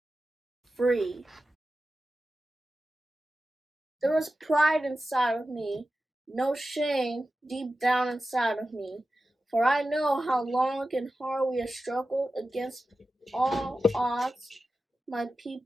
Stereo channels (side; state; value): both; normal; correlation 0.93